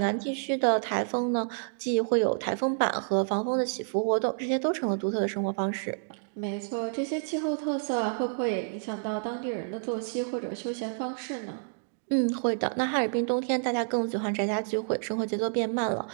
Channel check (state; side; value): silent; left; digital silence